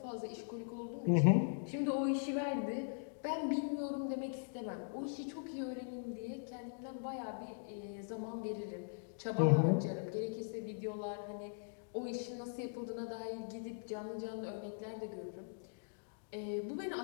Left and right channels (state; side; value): silent; right; digital silence